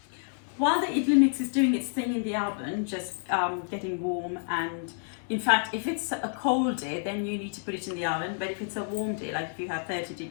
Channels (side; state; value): right; silent; 57 dB below the other